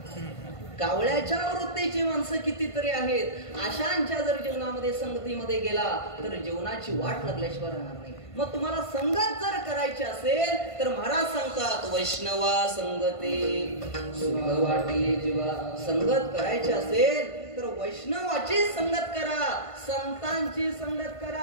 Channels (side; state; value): right; late; 1.5 ms